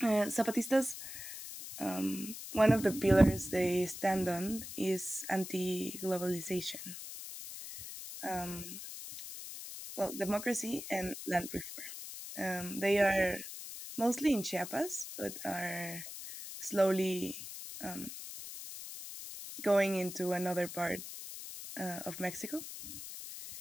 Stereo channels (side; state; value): left; noise; hiss, 10 dB below the sound